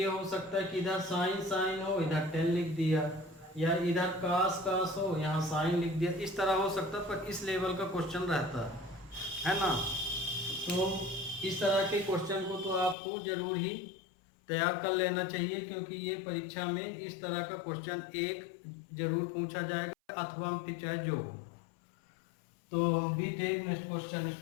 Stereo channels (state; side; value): drops out; right; at 13.0 s